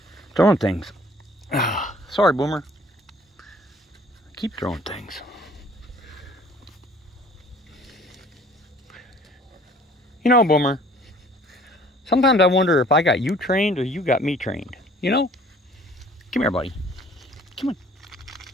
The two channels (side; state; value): both; normal; correlation 0.53